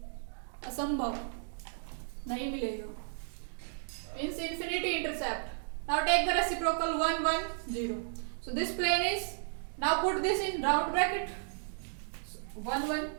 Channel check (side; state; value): left; silent; digital silence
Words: असंभव, नहीं मिलेगा। Means infinity intercept. Now take the reciprocal 1 1 0. So this plane is, now put this in round bracket, 1 1